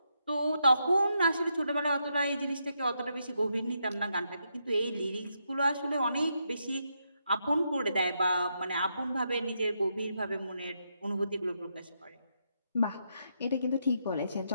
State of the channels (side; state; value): both; inverted; correlation -0.81